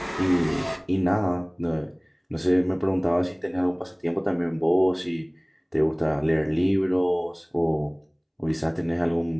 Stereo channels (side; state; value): both; identical; correlation 1.00